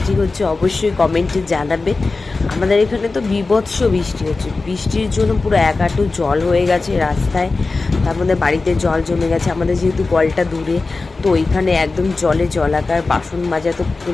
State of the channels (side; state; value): right; quieter; 3.7 dB